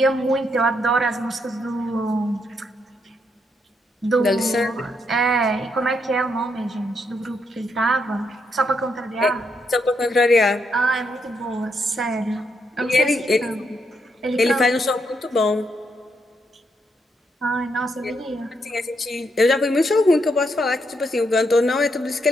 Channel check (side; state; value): both; normal; correlation 0.78